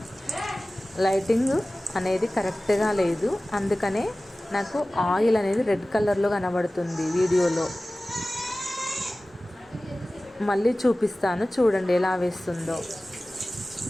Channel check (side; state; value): both; normal; correlation 0.97